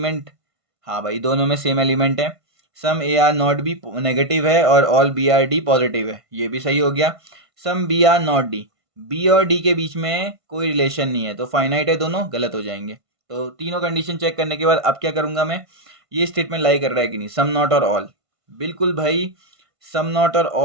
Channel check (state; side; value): late; left; 1.5 ms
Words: हाँ भाई दोनों में सेम एलिमेंट है। Some A are not B negative है और all B are D positive है, ये भी सही हो गया। Some B are not D, B और डी के बीच में कोई रिलेशन नहीं है तो फाइनाइट है दोनों, गलत हो जाएंगे। तो तीनों कंडीशन चेक करने के बाद अब क्या करूंगा मैं, ये स्टेटमेंट लाई कर रहा है कि नहीं, सम नॉट और ऑल, बिल्कुल भाई सम नॉट और